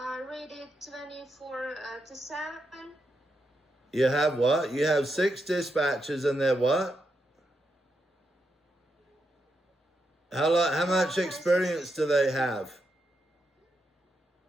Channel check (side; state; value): both; normal; correlation 0.83